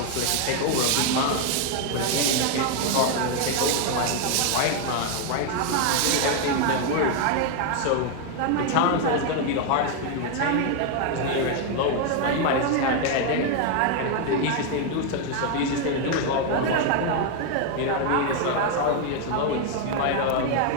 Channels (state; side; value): different; both; correlation 0.01